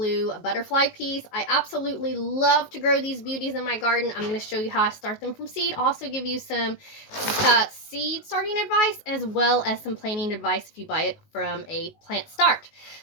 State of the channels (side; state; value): right; late; 19 ms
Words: butterfly peas. I absolutely love to grow these beauties in my garden. I'm gonna show you how I start them from seed. Also give you some seed starting advice as well as some planting advice if you buy it from a plant start.